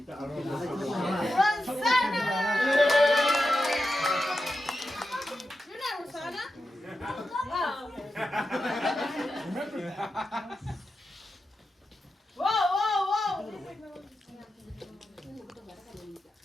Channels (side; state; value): both; normal; correlation 0.90